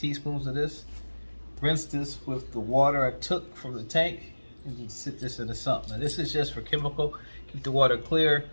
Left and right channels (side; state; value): both; inverted; correlation -1.00